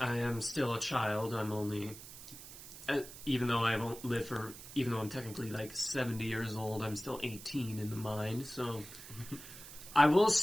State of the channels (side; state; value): right; noise; hiss, 14 dB below the sound